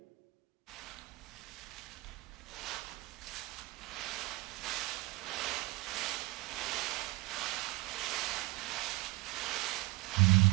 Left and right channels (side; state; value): left; quieter; 22.6 dB